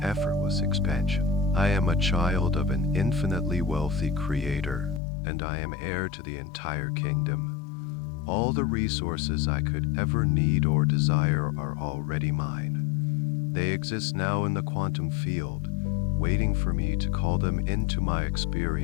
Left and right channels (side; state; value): right; drops out; at 5.0 s